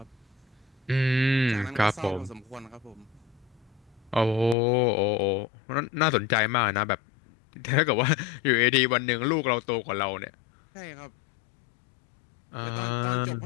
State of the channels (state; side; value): drops out; right; at 4.5 s